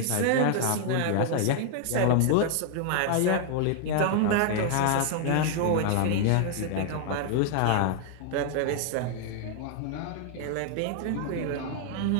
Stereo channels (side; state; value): both; different; correlation 0.00